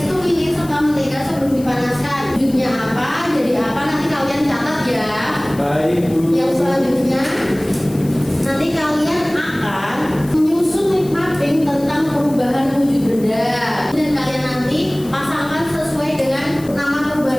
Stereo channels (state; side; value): noise; left; hiss, 20 dB below the sound